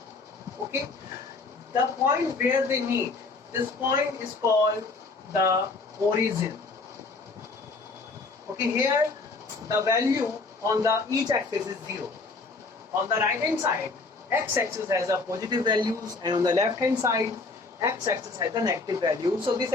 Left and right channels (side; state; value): right; quieter; 3.9 dB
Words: Okay. The point where they meet, this point is called the origin. Okay, here the value on the each axis is 0. On the right hand side, x-axis has a positive values, and on the left hand side, x-axis has a negative value. So this